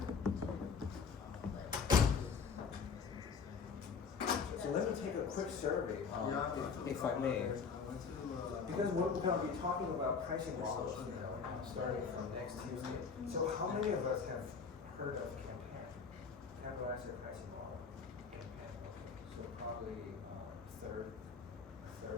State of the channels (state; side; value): quieter; right; 5.6 dB